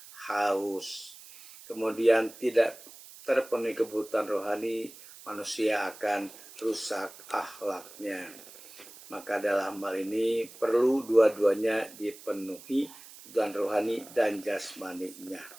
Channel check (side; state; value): right; noise; hiss, 18 dB below the sound